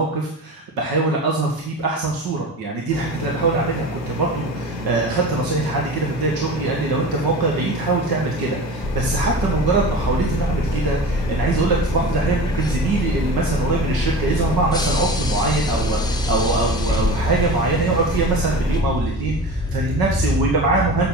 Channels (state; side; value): normal; both; correlation 0.33